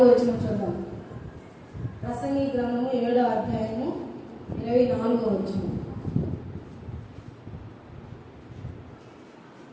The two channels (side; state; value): both; identical; correlation 1.00